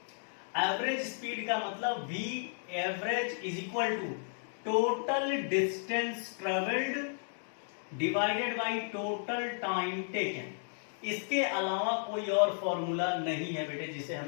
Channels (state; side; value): silent; right; digital silence